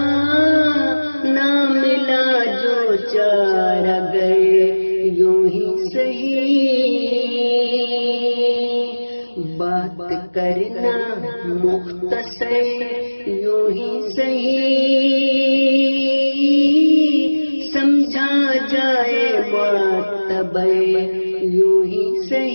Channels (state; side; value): inverted; both; correlation -1.00